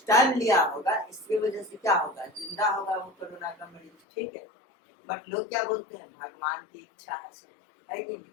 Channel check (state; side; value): drops out; right; at 3.9 s